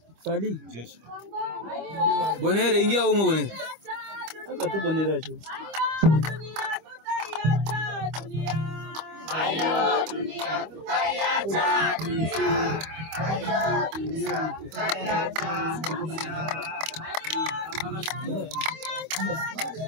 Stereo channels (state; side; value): late; left; 25 ms